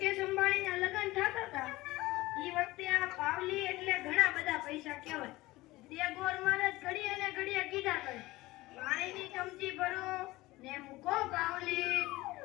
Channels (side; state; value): right; quieter; 19.2 dB